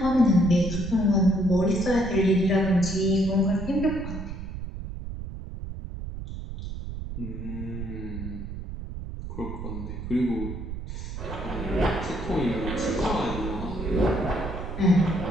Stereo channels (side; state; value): right; noise; rumble, 8 dB below the sound